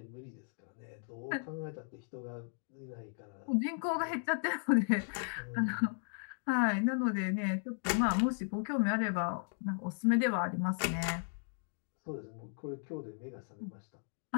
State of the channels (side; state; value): right; silent; 54 dB below the other